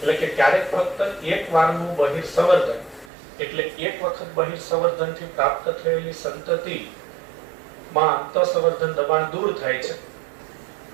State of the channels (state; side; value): drops out; left; at 3.1 s